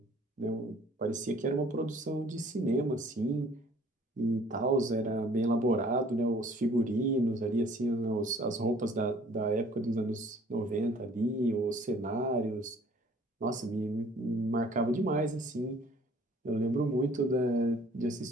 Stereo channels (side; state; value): both; normal; correlation 0.55